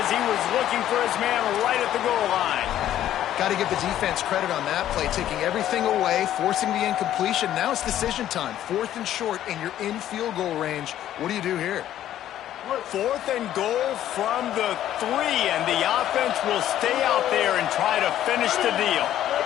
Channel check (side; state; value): right; quieter; 12.0 dB